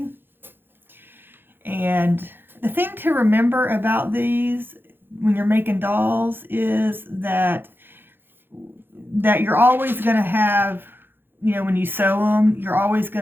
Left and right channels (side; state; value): left; late; 0.10 ms